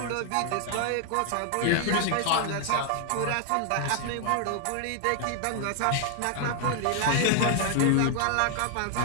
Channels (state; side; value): different; both; correlation 0.00